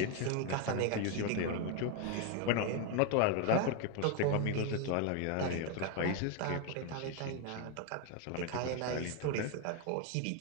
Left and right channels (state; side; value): different; both; correlation 0.01